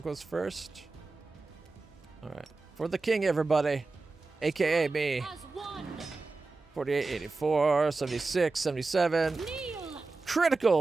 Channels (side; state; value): left; quieter; 3.7 dB